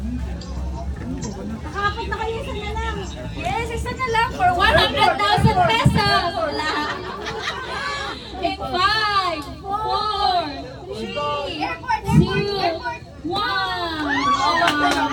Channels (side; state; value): both; identical; correlation 1.00